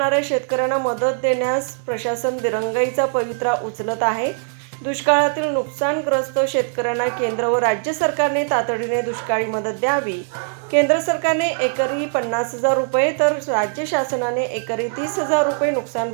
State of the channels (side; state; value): left; silent; 65 dB below the other